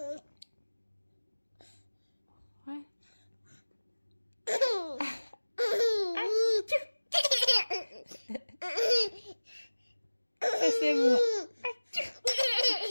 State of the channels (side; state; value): both; inverted; correlation -1.00